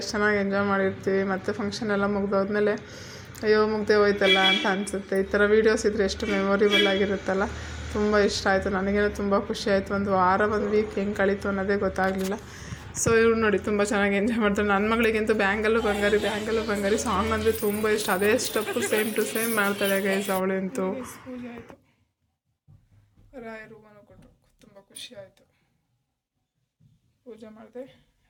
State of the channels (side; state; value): both; identical; correlation 1.00